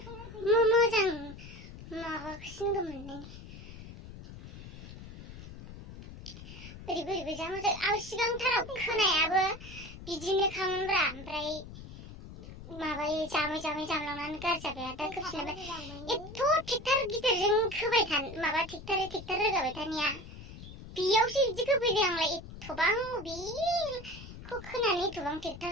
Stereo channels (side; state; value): left; noise; rumble, 14 dB below the sound